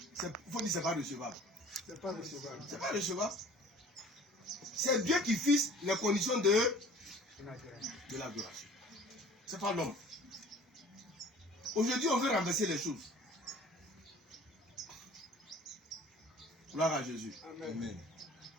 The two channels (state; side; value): normal; both; correlation 0.48